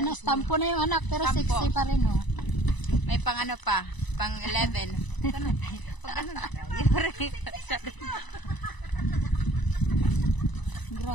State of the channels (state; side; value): late; right; 1.0 ms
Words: na stampo na yung anak, pero 60 pa rin, oh. May pang ano pa, pang 11.